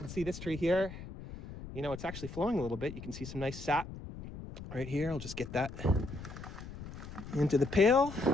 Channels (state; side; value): noise; left; rumble, 11 dB below the sound